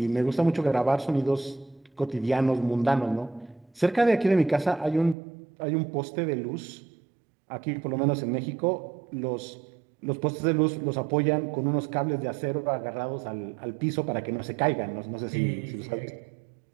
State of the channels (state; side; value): drops out; left; at 5.2 s